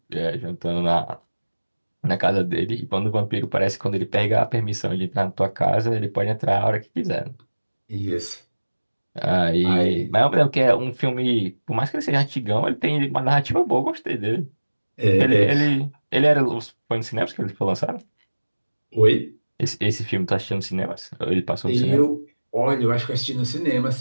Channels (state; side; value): inverted; both; correlation -1.00